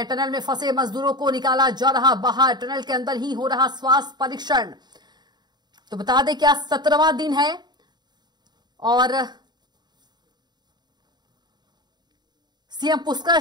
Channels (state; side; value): late; left; 0.21 ms